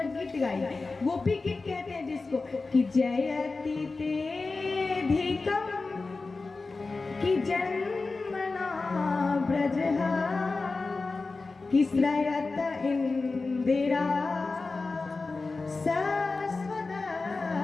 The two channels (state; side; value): quieter; right; 3.8 dB